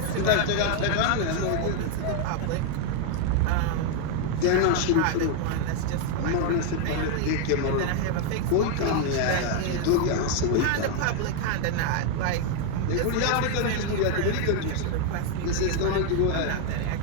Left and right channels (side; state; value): both; different; correlation 0.01